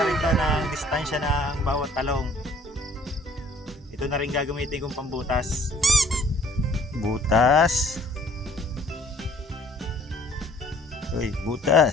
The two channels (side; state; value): both; normal; correlation 0.56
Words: rin to ng distansya ng bawat talong. Ito na rin gagamitin kong pambutas. Butas.